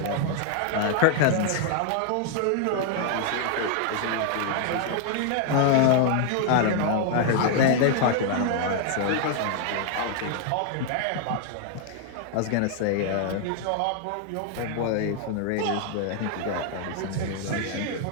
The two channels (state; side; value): different; both; correlation 0.00